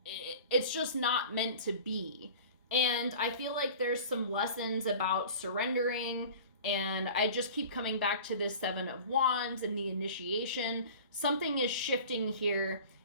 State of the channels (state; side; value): inverted; both; correlation -0.40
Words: it's just not meant to be. And I feel like there's some lessons about surrendering, and I just keep coming back to this 7 of Wands and the initiation. Something is shifting here,